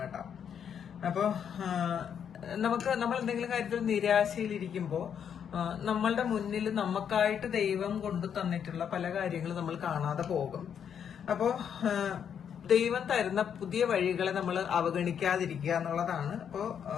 കേട്ടോ. അപ്പോ നമ്മൾ എന്തെങ്കിലും കാര്യത്തിൽ നിരാശയിലിരിക്കുമ്പോ നമ്മളുടെ മുന്നിൽ നമുക്കായിട്ട് ദൈവം കൊണ്ടു തന്നിട്ടുള്ള പല കാര്യങ്ങളും നമ്മൾ കാണാതെ പോകും. അപ്പോ ദൈവം തരുന്ന പുതിയ വഴികളെ നമ്മൾ അവഗണിക്കാതിരിക്കുക എന്നുള്ളതാണ്. അപ്പോ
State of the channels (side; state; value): right; quieter; 8.1 dB